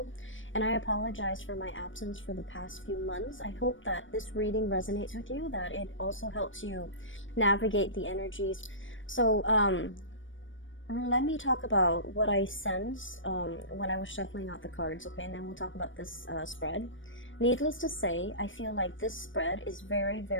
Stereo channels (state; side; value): late; right; 0.56 ms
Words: and I apologize for my absence for the past few months. I hope that this reading resonates with you, that it also helps you navigate the energies. So, let me talk about what I sensed when I was shuffling out the cards, okay? And then we'll talk about this spread. Needless to say, I feel like this spread is very,